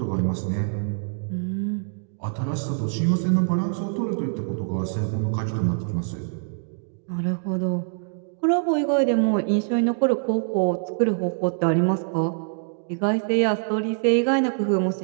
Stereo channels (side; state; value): left; silent; digital silence